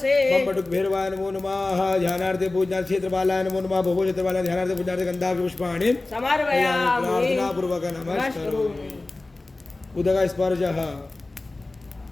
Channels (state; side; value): quieter; right; 3.1 dB